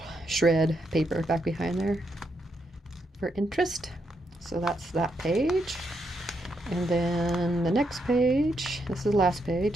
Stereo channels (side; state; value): both; normal; correlation 0.80